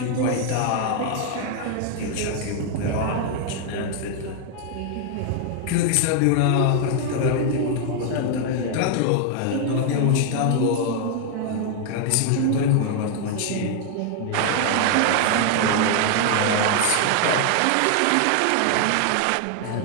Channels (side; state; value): both; different; correlation 0.00